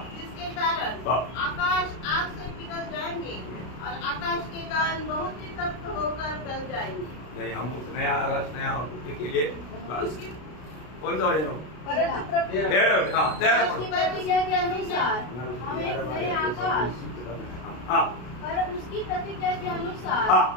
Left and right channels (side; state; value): right; late; 33 ms